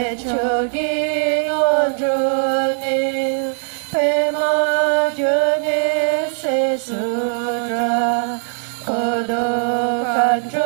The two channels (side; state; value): left; silent; digital silence